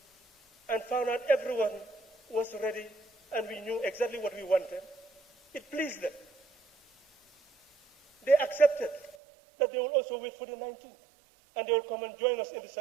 and found out everyone was ready and we knew exactly what we wanted, it pleased them. They accepted that they will also wait for the 19th and they will come and join us in the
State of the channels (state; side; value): drops out; left; at 9.2 s